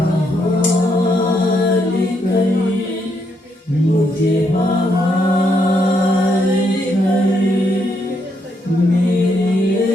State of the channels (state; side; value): normal; both; correlation 0.76